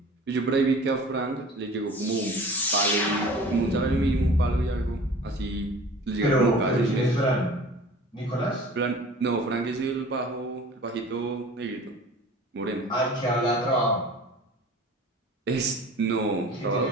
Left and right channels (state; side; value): normal; both; correlation 0.43